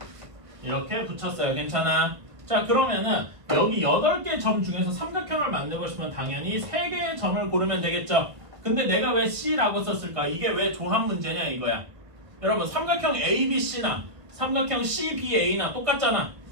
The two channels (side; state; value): left; late; 1.5 ms